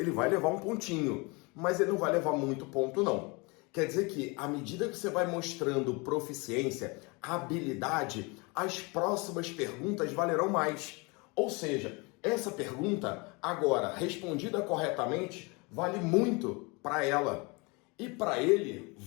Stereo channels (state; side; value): quieter; right; 28.1 dB